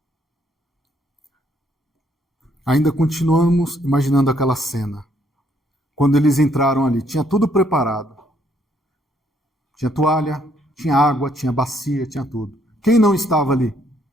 Ainda continuamos imaginando aquela cena. Quando eles entraram ali, tinha tudo preparado. Tinha toalha, tinha água, tinha bacia, tinha tudo. Quem não estava ali?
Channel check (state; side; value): normal; both; correlation 0.69